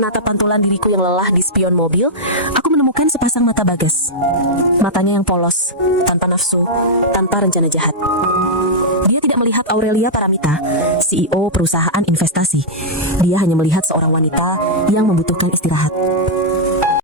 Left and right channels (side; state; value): both; normal; correlation -0.08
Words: pantulan diriku yang lelah di spion mobil, aku menemukan sepasang mata Bagas. Matanya yang polos, tanpa nafsu, tanpa rencana jahat. Dia tidak melihat Aurelia Paramita, CEO perusahaan investasi. Dia hanya melihat seorang wanita yang membutuhkan istirahat.